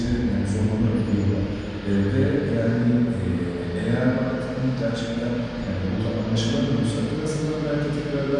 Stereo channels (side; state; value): both; identical; correlation 1.00